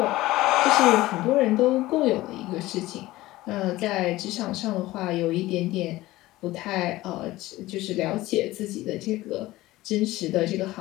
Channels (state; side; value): quieter; right; 17.7 dB